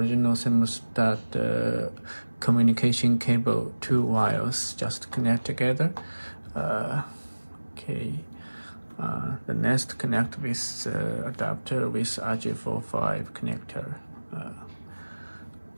thermostat communication cable, two wires just connect together. The Nest connect with the adapter with RJ45 connector.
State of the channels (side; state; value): both; inverted; correlation -1.00